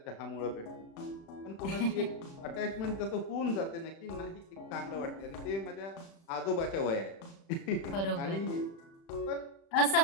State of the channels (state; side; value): late; right; 36 ms